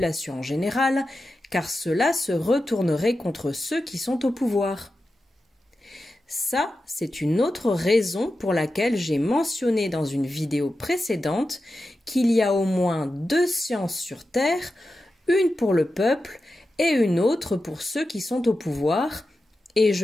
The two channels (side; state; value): both; normal; correlation 0.91